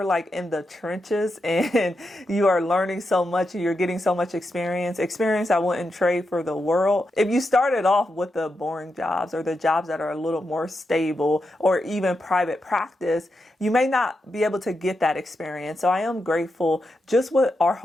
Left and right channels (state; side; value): normal; both; correlation 0.86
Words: like in the trenches and you are learning so much, you're getting so much experience I wouldn't trade for the world. If you started off with the boring jobs or the jobs that are a little more stable, or even private practice, you may not be able to get that experience. So I am grateful just with our